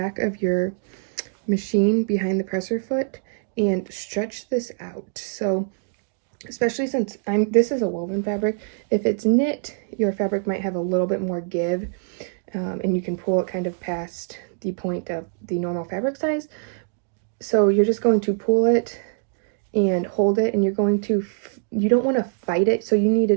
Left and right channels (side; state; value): left; silent; digital silence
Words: of your machine behind the presser foot and stretch this out. So especially since this is a woven fabric, if it's knit, your fabric might have a little bit more give, and you can pull it kind of past the point of the normal fabric size. So you're just going to pull it and hold it, and you're going to, you don't want to fight it, so you need